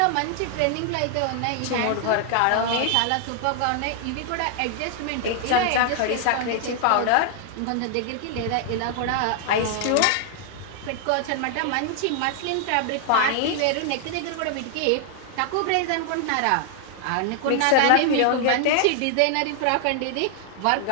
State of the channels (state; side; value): different; both; correlation 0.00